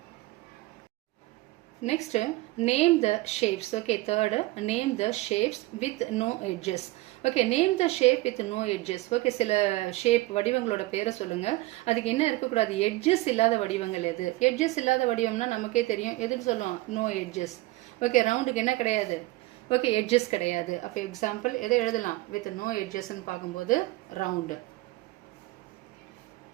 Next, name the shapes. Okay, third, name the shapes with no edges. Okay, name the shape with no edges. Okay, சில ஷேப் வடிவங்களோட பேரை சொல்லுங்க. அதுக்கு என்ன இருக்கக்கூடாது, எட்ஜஸ் இல்லாத வடிவங்கள் எது? எட்ஜஸ் இல்லாத வடிவம்னா நமக்கே தெரியும், எதுன்னு சொல்லுவோம், நோ எட்ஜஸ். ஓகே, ரவுண்டுக்கு என்ன கிடையாது, ஓகே எட்ஜஸ் கிடையாது. அப்போ எக்ஸாம்பிள் எதை எழுதலாம், வித் நோ எட்ஜஸ்ன்னு பார்க்கும்போது ரவுண்ட்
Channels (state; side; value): quieter; left; 19.4 dB